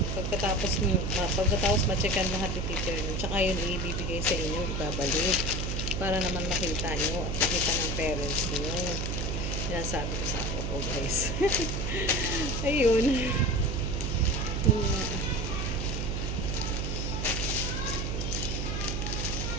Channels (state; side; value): noise; right; hum, 1 dB below the sound